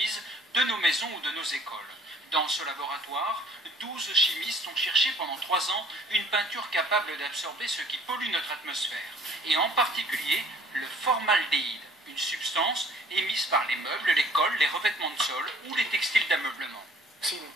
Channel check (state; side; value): normal; both; correlation 0.55